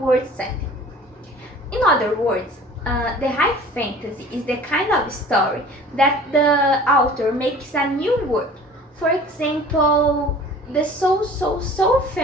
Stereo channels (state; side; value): normal; both; correlation 0.45